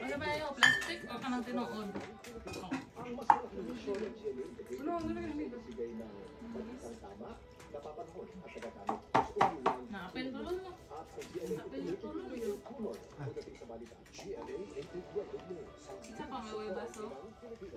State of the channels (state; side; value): identical; both; correlation 1.00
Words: ba yung plastic o kanang tinood? Ano na yung Napin tulong mo. Napin tulong mo. Isa pa may baso?